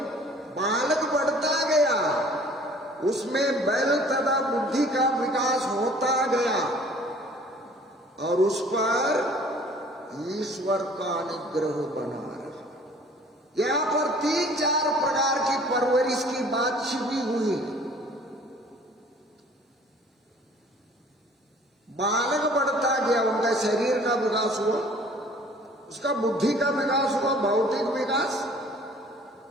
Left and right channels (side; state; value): both; normal; correlation 0.52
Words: बालक बढ़ता गया, उसमें बल तथा बुद्धि का विकास होता गया और उस पर ईश्वर का अनुग्रह बना रहा। यहाँ पर 3-4 प्रकार की परवरिश की बात छिपी हुई है। बालक बढ़ता गया, उनका शरीर का विकास हुआ, उसका बुद्धि का विकास हुआ, भौतिक विकास,